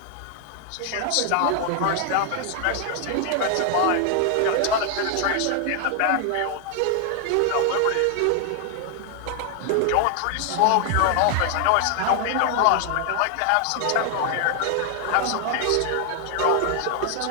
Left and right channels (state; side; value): different; both; correlation 0.00